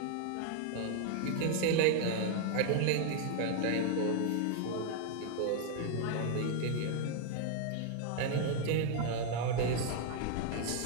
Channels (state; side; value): different; both; correlation 0.00